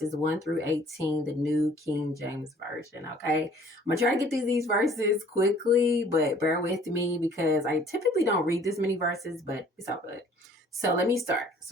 1 through 18, the New King James Version. Okay. I'm going to try to get through these verses quickly, but bear with me because I typically don't read this many verses, but it's all good. So let me start.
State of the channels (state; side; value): normal; both; correlation 0.55